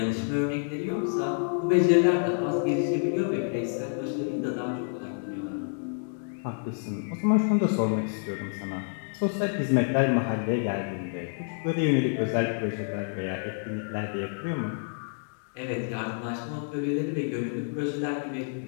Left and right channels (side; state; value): right; silent; 59 dB below the other